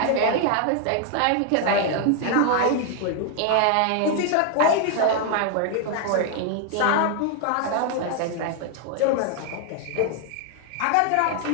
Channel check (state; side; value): different; both; correlation 0.00